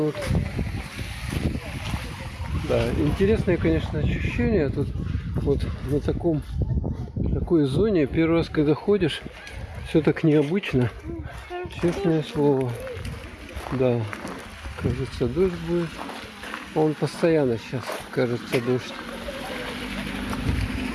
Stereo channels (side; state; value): both; identical; correlation 1.00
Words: Да, интересное, конечно, ощущение. Тут Вот на такой зоне первый раз, когда ходишь, все так необычно. Честное слово. Да, кажется, дождь будет. Он постоянно сейчас, кажется, дождь.